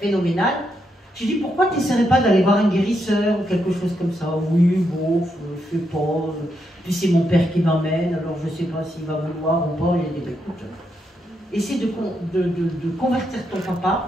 J'ai dit, pourquoi tu n'essaierais pas d'aller voir un guérisseur ou quelque chose comme ça? Oui, bon, je sais pas. Puis c'est mon père qui m'emmène, alors je ne sais pas s'il va vouloir ou pas. Il a dit, écoute, essaie de convertir ton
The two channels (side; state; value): both; normal; correlation 0.81